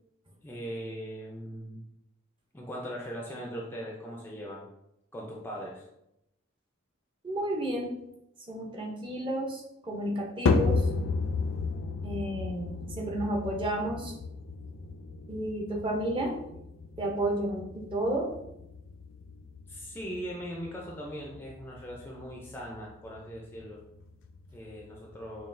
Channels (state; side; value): normal; both; correlation 0.57